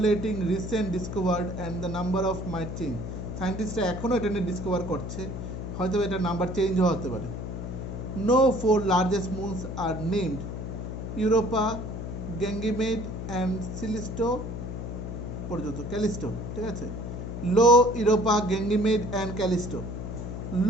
recent discovered and the number of might change. Scientists এখনো এটা নিয়ে ডিসকভার করছে, হয়তো এটা নাম্বার চেঞ্জও হতে পারে। No four largest moons are named Europa, Ganymede and Callisto. পর্যন্ত ক্যালিস্টো, ঠিক আছে। Io, Europa, Ganymede and Callisto.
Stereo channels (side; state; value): left; noise; hum, 6 dB below the sound